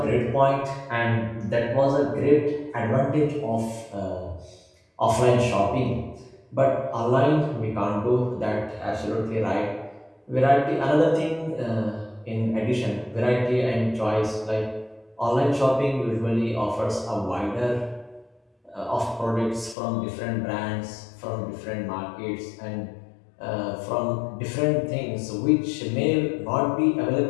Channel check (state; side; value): drops out; right; at 19.8 s